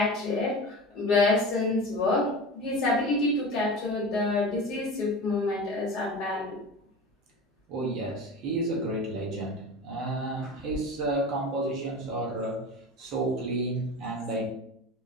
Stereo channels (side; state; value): both; normal; correlation 0.31